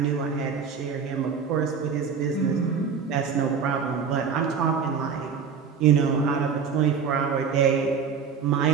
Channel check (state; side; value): quieter; left; 6.3 dB